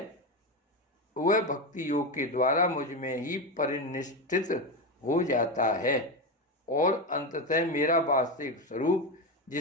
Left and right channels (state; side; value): normal; both; correlation 0.15